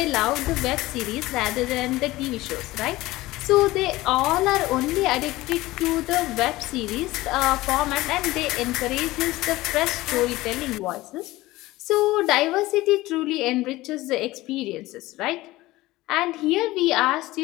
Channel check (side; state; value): right; quieter; 18.4 dB